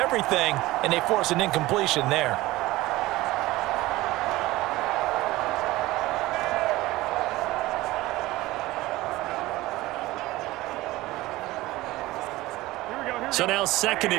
and they force an incompletion there. So now 2nd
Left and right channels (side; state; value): left; quieter; 18.4 dB